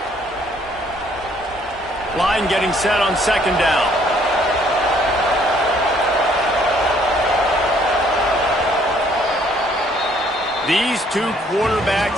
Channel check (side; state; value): both; normal; correlation 0.63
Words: Line getting set on 2nd down. These 2